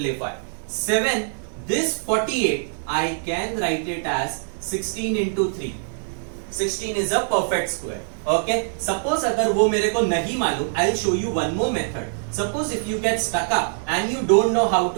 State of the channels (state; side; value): silent; left; digital silence